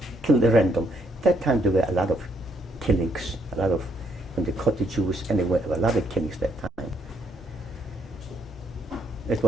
killed at random. At that time there were a lot of killings, when they caught the Jews, and there were a lot of killings that time. It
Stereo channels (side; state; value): both; normal; correlation 0.72